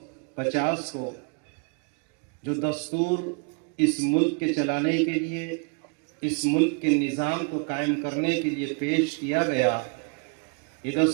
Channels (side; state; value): left; quieter; 36.2 dB